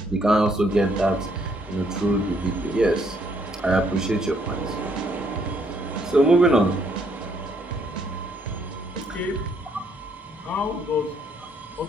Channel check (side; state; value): both; normal; correlation 0.69